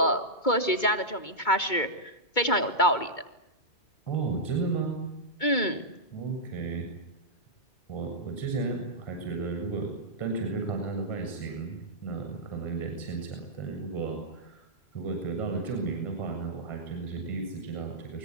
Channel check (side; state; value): right; late; 2.2 ms